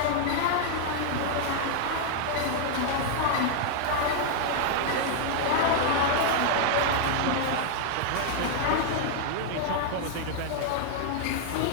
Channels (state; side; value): different; both; correlation 0.00